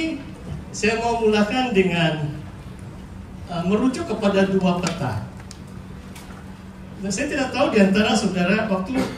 saya mau mulakan dengan merujuk kepada dua peta. Dan saya tidak tahu di antara saudara waktu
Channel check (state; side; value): identical; both; correlation 1.00